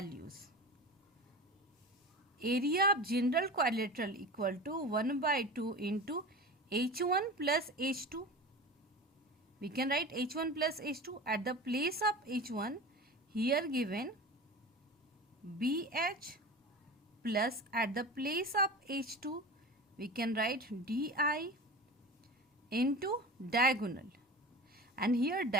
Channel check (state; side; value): normal; both; correlation 0.33